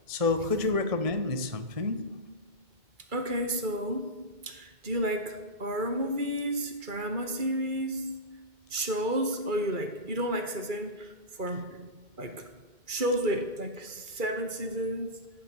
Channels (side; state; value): left; late; 2.3 ms